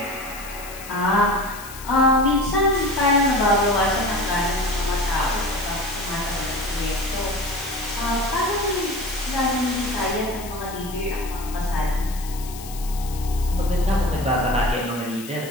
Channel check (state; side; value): noise; left; hiss, 14 dB below the sound